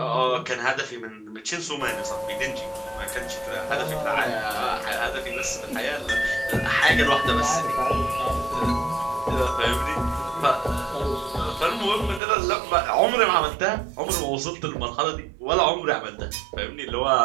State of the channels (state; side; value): drops out; left; at 12.2 s